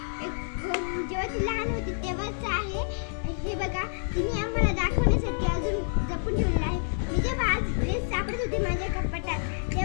जेव्हा ती लहान होती तेव्हाच आहे। हे बघा, तिने आम्हाला दाखवण्यासाठी अजून जपून ठेवलेलं आहे। मी जेव्हा आज ड्रेस सापडत होते माझ्या कपाटात,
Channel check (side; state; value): right; silent; digital silence